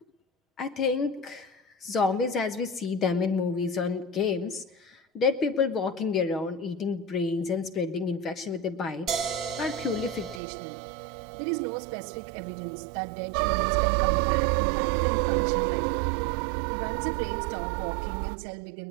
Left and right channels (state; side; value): drops out; left; at 10.4 s